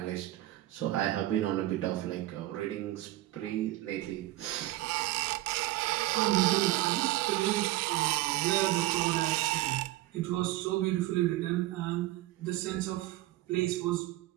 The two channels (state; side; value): quieter; left; 16.9 dB